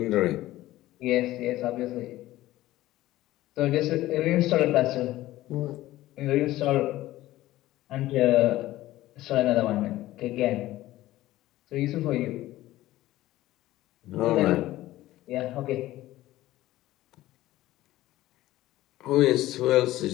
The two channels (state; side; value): quieter; right; 16.0 dB